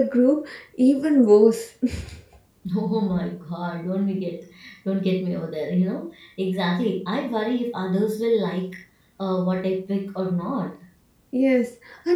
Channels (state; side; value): identical; both; correlation 1.00